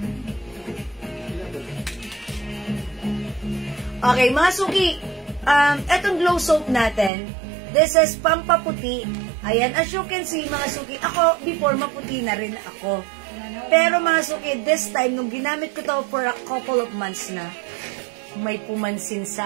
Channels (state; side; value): drops out; left; at 7.1 s